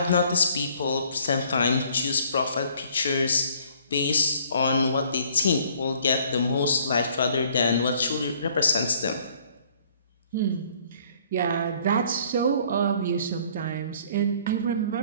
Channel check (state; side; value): inverted; both; correlation -0.59